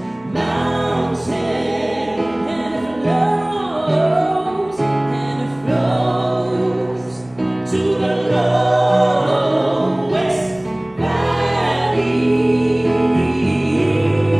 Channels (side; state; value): right; noise; rumble, 28 dB below the sound